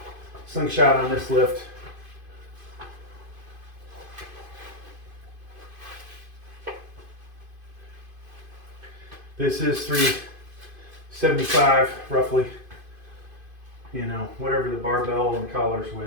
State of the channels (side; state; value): left; late; 2.5 ms